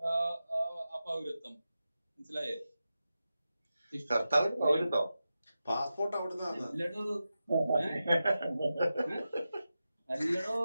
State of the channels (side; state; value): both; inverted; correlation -0.92